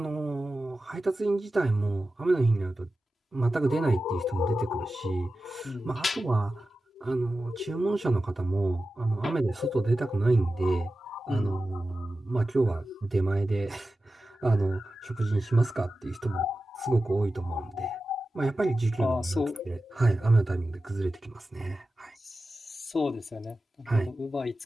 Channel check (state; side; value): normal; both; correlation 0.93